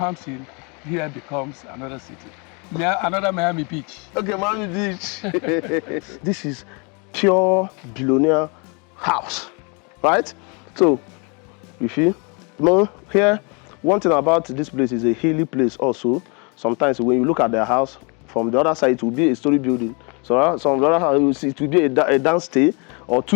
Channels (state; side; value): quieter; right; 32.7 dB